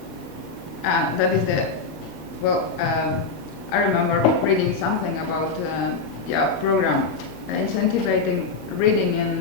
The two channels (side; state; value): right; quieter; 4.4 dB